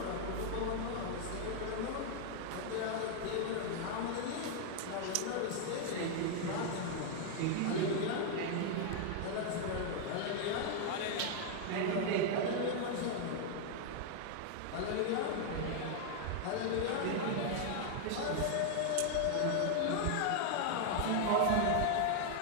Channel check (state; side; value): different; both; correlation 0.00